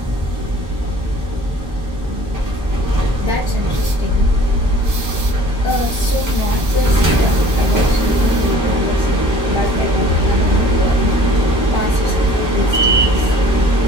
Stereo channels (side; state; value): both; normal; correlation 0.49